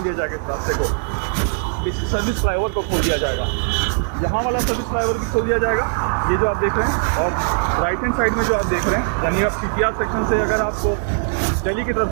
दिया जाएगा इस रास्ते को, इस सर्विस फ्लाईओवर को खोल दिया जाएगा। यहाँ वाला सर्विस फ्लाईओवर भी खोल दिया जाएगा, ये जो आप देख रहे हैं। और राइट हैंड साइड में जो आप देख रहे हैं, यानी आप CPR सेक्शन से अगर आपको दिल्ली की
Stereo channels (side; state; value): left; silent; digital silence